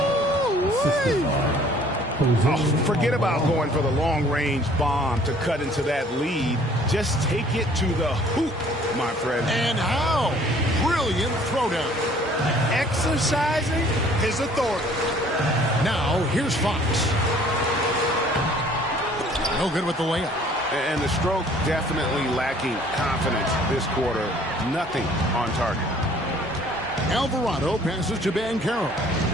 Oh, forget about going for the long-range bomb to cut into that lead. Just take it to the hoop, my friend. And how? Brilliant throwdown. Exercising his authority. Now, here's Fox. No good with the layup. And the stroke definitely lacking confidence this quarter. Nothing on target. Alvarado passes to Banchero.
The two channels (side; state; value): both; normal; correlation 0.56